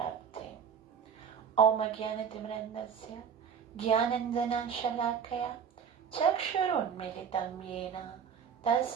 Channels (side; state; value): left; quieter; 7.3 dB